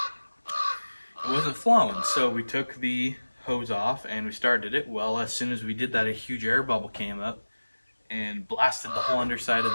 It wasn't flowing, so we took the hose off and we started it. Well, as soon as we did that, a huge air bubble came up and blasted the whole underside of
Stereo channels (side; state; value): both; inverted; correlation -1.00